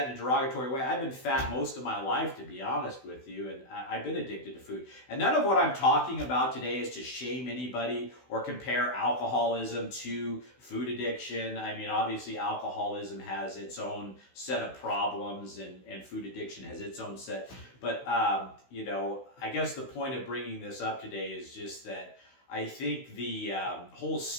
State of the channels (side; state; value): right; late; 16 ms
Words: in a derogatory way. I've been fat most of my life, to be honest with you, and I've been addicted to food. And none of what I'm talking about today is to shame anybody or compare alcoholism to food addiction. I mean, obviously, alcoholism has its own set of problems, and food addiction has its own set. But, I guess the point of bringing this up today is just that I think the whole